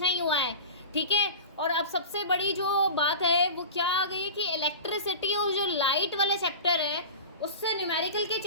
हुआ है, ठीक है। और अब सबसे बड़ी जो बात है वो क्या आ गई है कि इलेक्ट्रिसिटी और जो लाइट वाला चैप्टर है उससे न्यूमेरिकल के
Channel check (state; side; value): inverted; both; correlation -0.32